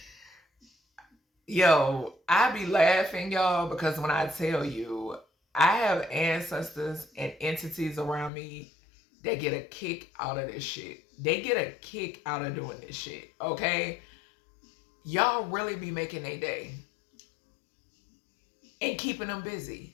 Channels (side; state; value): right; drops out; at 8.3 s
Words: Yo, I be laughing, y'all, because when I tell you, I have ancestors and entities around me that get a kick out of this shit. They get a kick out of doing this shit, okay? Y'all really be making a day and keeping them